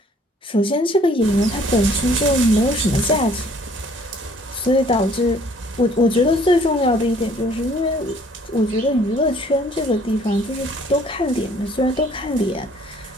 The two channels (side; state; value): both; normal; correlation 0.58